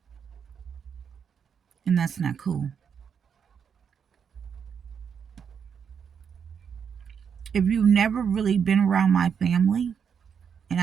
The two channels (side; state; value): left; quieter; 7.1 dB